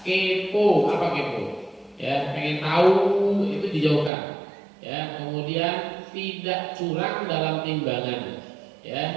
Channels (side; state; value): left; drops out; at 4.1 s